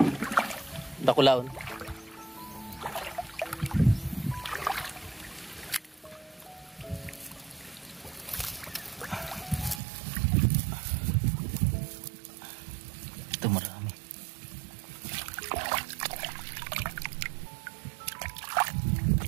Dakulaon. Ito marami.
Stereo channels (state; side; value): drops out; left; at 9.8 s